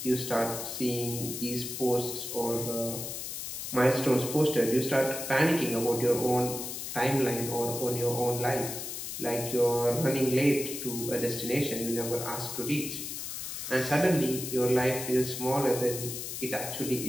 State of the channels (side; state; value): left; noise; hiss, 6 dB below the sound